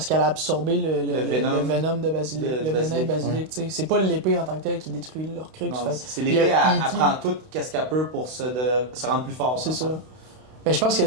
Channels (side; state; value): left; late; 32 ms